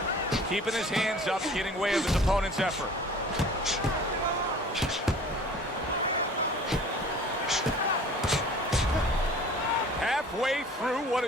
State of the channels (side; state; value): both; normal; correlation 0.46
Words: Keeping his hands up, getting way of his opponent's effort. Halfway through what